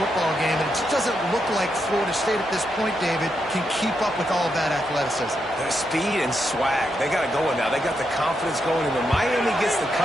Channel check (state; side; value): normal; both; correlation 0.83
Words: game, and it just doesn't look like Florida State at this point, David, can keep up with all of that athleticism. Their speed and swag. They got it going now. They got the confidence going. And when Miami gets the